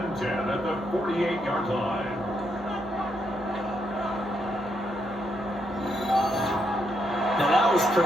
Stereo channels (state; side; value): normal; both; correlation 0.78